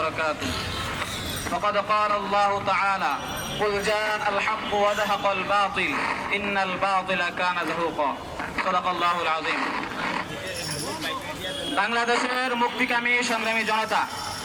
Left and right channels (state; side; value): identical; both; correlation 1.00